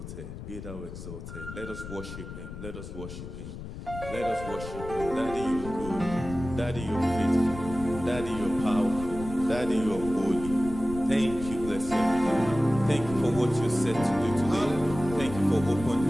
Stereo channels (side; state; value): left; noise; rumble, 10 dB below the sound